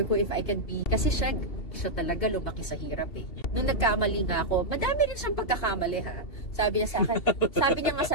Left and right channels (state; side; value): late; right; 2.7 ms